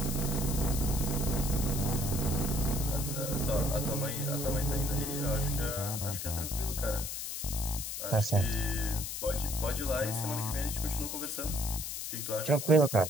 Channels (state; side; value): noise; left; hiss, 5 dB below the sound